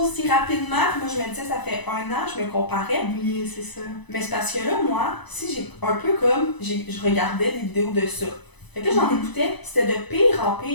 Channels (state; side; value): late; right; 1.0 ms